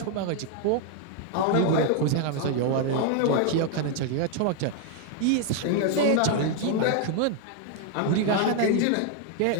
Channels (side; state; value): both; different; correlation 0.00